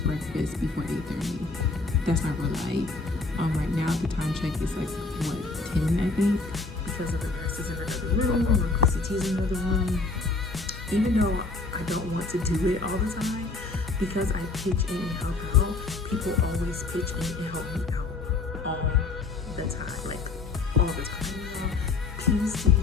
breakfast before 8:30. That's not real life. Right now the time check is like what, 10, I think, because of the nurses in another room or PCTs in another room. Even though I don't want to do it all the time, because I pitch in and help out, people always pitch in and help me out all the time, like all the time.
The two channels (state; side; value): quieter; right; 3.7 dB